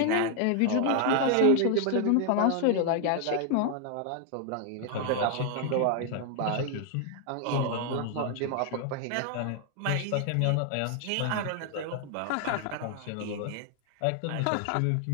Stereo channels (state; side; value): different; both; correlation 0.00